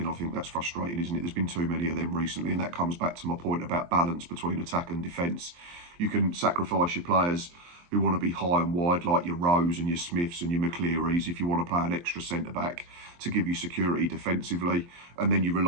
I think that's frustrating, isn't it? There's been too many of them recently, and that comes back to my point about balance between attack and defence. You can sacrifice your players who want to be high and wide, like your Rose and your Smiths and your McClearys, if you want to play an extra centre-back to give you security defensively. And then you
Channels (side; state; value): left; late; 23 ms